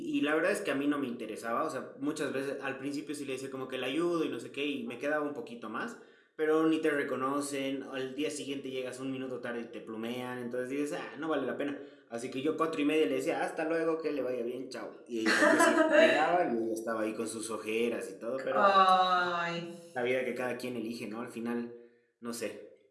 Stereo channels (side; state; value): both; identical; correlation 1.00